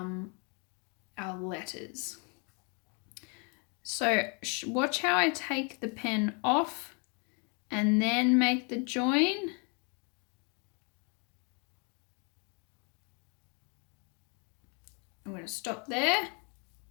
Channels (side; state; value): right; quieter; 35.6 dB